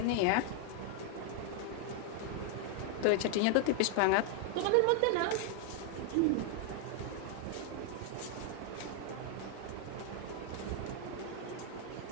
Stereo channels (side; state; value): both; different; correlation 0.00